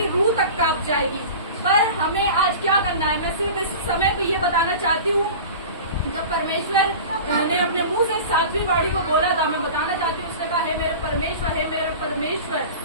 रूह तक कांप जाएगी। पर हमें आज क्या करना है, मैं सिर्फ इस समय पे ये बताना चाहती हूँ। जब परमेश्वर ने अपने मुंह से सातवीं बाड़ी को बोला था, मैं बताना चाहती हूँ, उसने कहा, हे मेरे परमेश्वर,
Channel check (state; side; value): inverted; both; correlation -0.35